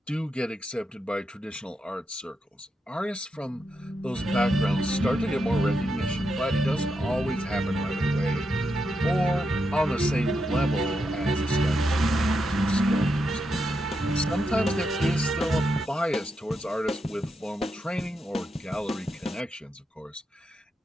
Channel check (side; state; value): both; normal; correlation 0.84